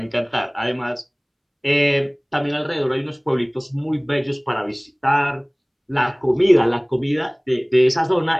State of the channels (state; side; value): identical; both; correlation 1.00